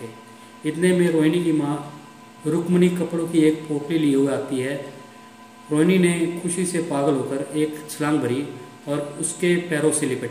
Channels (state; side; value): identical; both; correlation 1.00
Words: इतने में रोहिणी की माँ रुक्मणी कपड़ों की एक पोटली लिए हुए आती है। रोहिणी ने खुशी से पागल होकर एक छलांग भरी और उसके पैरों से लिपट